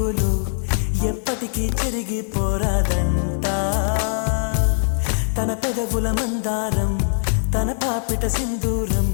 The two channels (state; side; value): silent; right; digital silence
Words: చెరిగిపోరాదంట తన పెదవుల మందారం తన పాపిట సింధూరం